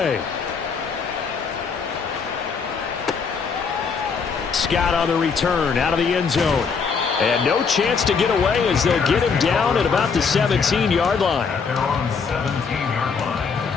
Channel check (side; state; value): right; quieter; 5.6 dB